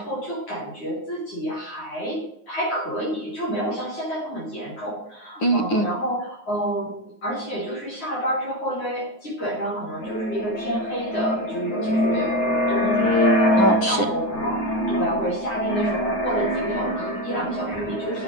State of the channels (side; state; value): right; late; 9.5 ms